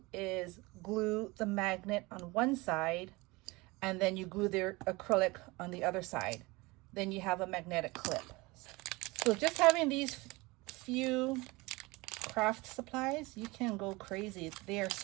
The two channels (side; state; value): left; quieter; 23.4 dB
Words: is glue the magnet on one side, and then you glue the acrylic on the other side. Then you have a magnetic clip. So just having these few craft supplies, you can go crazy. They are